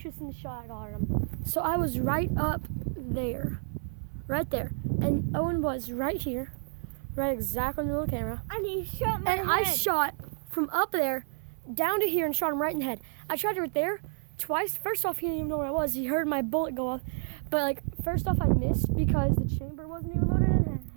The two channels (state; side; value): silent; left; 58 dB below the other